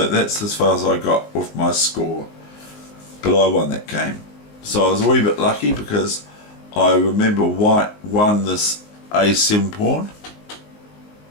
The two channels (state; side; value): late; right; 19 ms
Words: that's as far as I got with my score, but I won that game. So I was a wee bit lucky because I remember white won this A7 pawn,